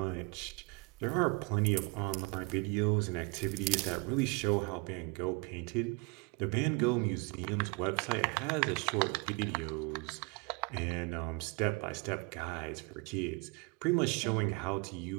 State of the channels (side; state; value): left; quieter; 28.9 dB